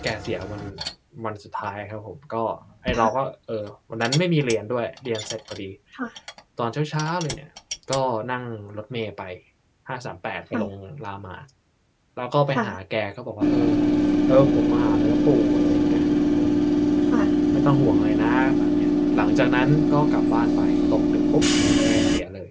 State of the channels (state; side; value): identical; both; correlation 1.00